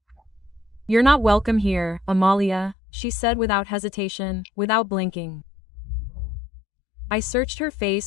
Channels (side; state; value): right; drops out; at 2.8 s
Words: "You're not welcome here, Amalia," she said without hesitation, without blinking. I searched her